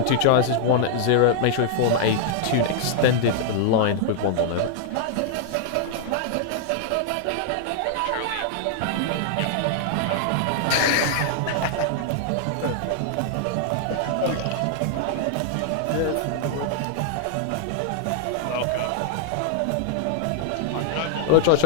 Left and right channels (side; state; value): both; different; correlation -0.01